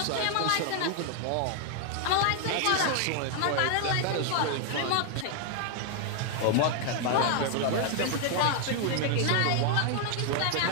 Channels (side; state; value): both; different; correlation 0.00